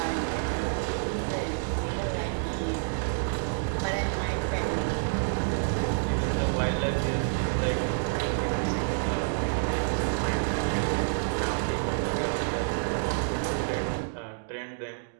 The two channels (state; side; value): silent; left; digital silence